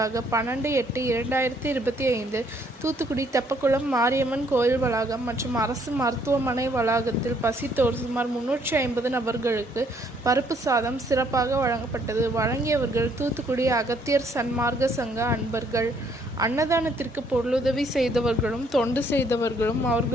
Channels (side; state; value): both; normal; correlation 0.67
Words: 12/8/2025 தூத்துக்குடி தெப்பக்குளம் மாரியம்மன் கோயில் வளாகம் மற்றும் அரசு மருத்துவமனை வளாகத்தில் பசித்தோர் சுமார் 350 நபர்களுக்கு பருப்பு சாதம் சிறப்பாக வழங்கப்பட்டது. வழங்கியவர்கள் தூத்துக்குடி அகத்தியர் சன்மார்க்க சங்க அன்பர்கள். அன்னதானத்திற்கு பொருளுதவி செய்தவர்களும் தொண்டு செய்தவர்களும்